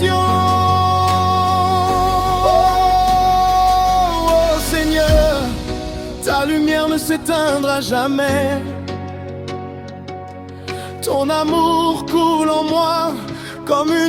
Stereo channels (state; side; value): identical; both; correlation 1.00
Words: Oh Seigneur, ta lumière ne s'éteindra jamais. Ton amour coule en moi comme